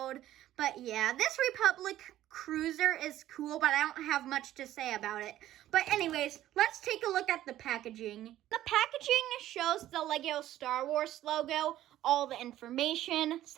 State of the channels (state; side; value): quieter; left; 13.4 dB